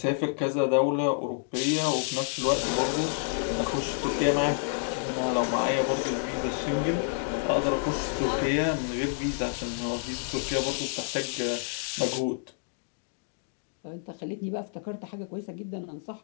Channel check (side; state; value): right; silent; digital silence